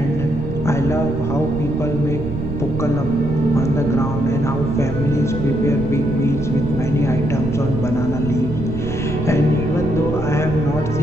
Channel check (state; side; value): noise; right; rumble, 8 dB below the sound